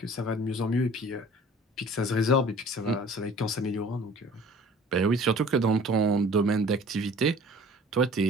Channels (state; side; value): normal; both; correlation 0.49